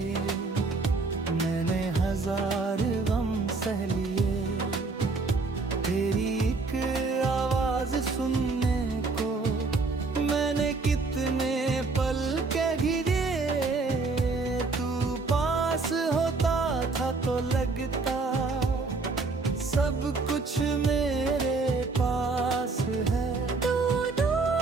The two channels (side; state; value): left; quieter; 3.9 dB